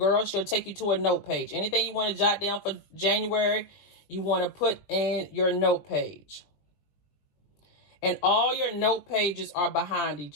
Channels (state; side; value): late; right; 20 ms